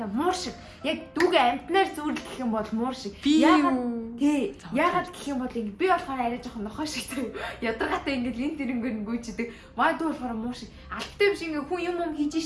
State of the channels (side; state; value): both; identical; correlation 1.00